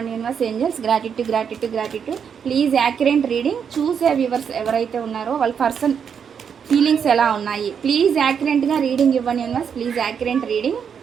universe angels. Gratitude gratitude gratitude. Please accurate reading. చూసే వ్యూవర్స్ ఎవరైతే ఉన్నారో వాళ్ళ పర్సన్ ఫీలింగ్స్ ఎలా ఉన్నాయి, ప్లీజ్ యాక్యురేట్గా రీడింగ్ ఇవ్వండి యూనివర్స్. Please accurate reading.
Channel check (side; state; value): left; quieter; 7.3 dB